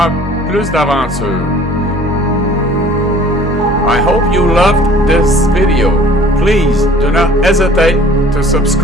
plus d'aventures. I hope you loved this video. Please do not hesitate to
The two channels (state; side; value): normal; both; correlation 0.51